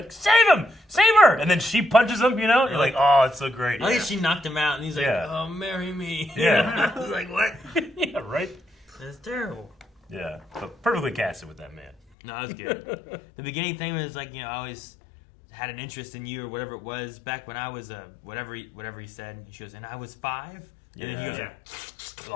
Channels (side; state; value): right; drops out; at 12.0 s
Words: save him! Save her! And then she punches him, you know? You're like, oh, it's so great. I think she knocked him out, and he's like, oh, marry me. Yeah. I was like, what? Yeah, right? That's terrible. Yeah. But perfectly casted with that man. No, that was good. The beginning thing was like, I always had an interest in you or whatever it was back when I was whatever he said. She goes, and I was 5? And then he goes,